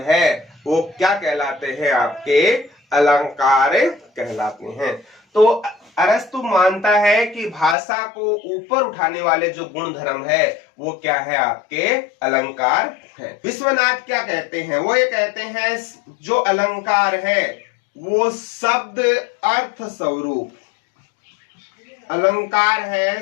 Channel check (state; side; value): drops out; right; at 7.8 s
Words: है वो क्या कहलाते हैं, आपके अलंकार कहलाते हैं। तो अरस्तु मानता है कि भाषा को ऊपर उठाने वाले जो गुण धर्म है वो क्या है, आपके अलंकार है। विश्वनाथ क्या कहते हैं, वो ये कहते हैं जो अलंकार है वो शब्द अर्थ स्वरूप, अलंकार है